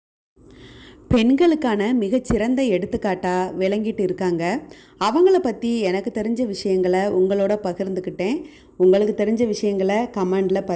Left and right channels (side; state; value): both; identical; correlation 1.00